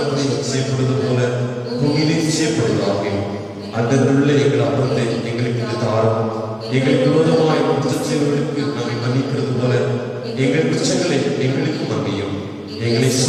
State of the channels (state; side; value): identical; both; correlation 1.00